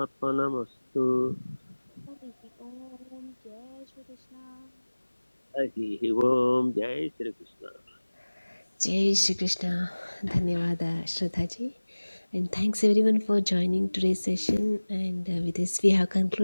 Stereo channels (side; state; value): both; inverted; correlation -1.00